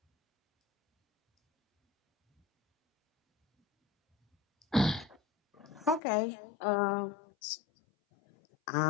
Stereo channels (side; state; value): right; drops out; at 6.0 s